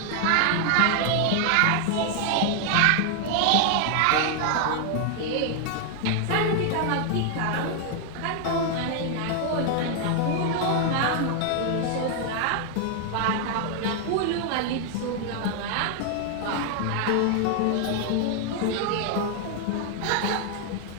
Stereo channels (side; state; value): both; different; correlation 0.00